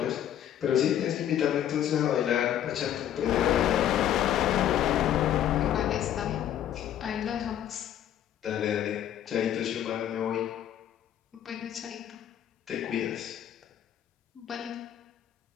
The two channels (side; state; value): right; quieter; 10.8 dB